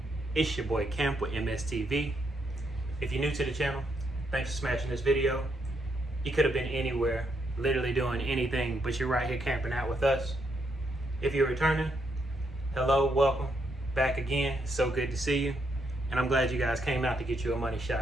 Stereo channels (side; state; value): both; normal; correlation 0.77